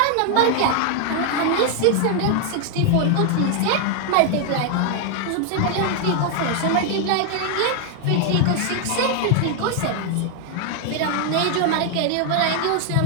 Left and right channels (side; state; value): both; different; correlation 0.00